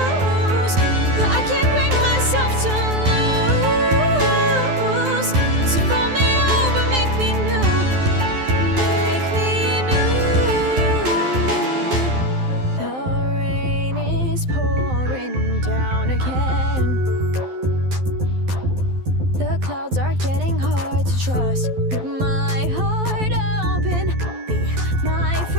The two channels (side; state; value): left; late; 12 ms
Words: but I can't bring myself to lose. So fold me over, make me new, make me new. The rain is pouring down again. The clouds are getting hard to trust. Rip my heart open, be my